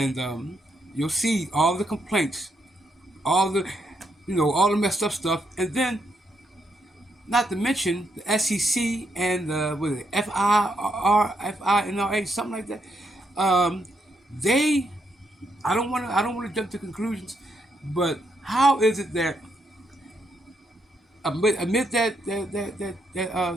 you'll see all the complaints, all the all the messed up stuff, and then not to mention the SEC and what is it, FINRA, something like that. They, I don't want to jump to conclusions, but how is it that amid that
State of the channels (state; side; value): normal; both; correlation 0.78